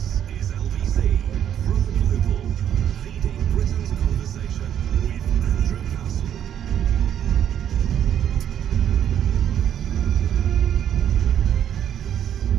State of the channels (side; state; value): left; quieter; 9.8 dB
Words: is LBC from Global, leading Britain's conversation with Andrew Castle.